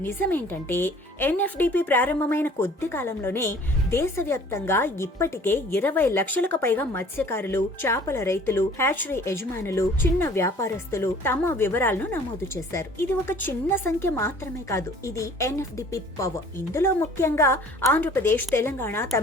నిజమేంటంటే ఎన్ఎఫ్డిపి ప్రారంభమైన కొద్ది కాలంలోనే దేశవ్యాప్తంగా ఇప్పటికే 20 లక్షలకు పైగా మత్స్యకారులు, చేపల రైతులు, హ్యాచరీ యజమానులు, చిన్న వ్యాపారస్తులు తమ వివరాలను నమోదు చేశారు. ఇది ఒక చిన్న సంఖ్య మాత్రమే కాదు, ఇది ఎన్ఎఫ్డిపి పవర్. ఇందులో ముఖ్యంగా ఆంధ్రప్రదేశ్, తెలంగాణ,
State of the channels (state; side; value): normal; both; correlation 0.51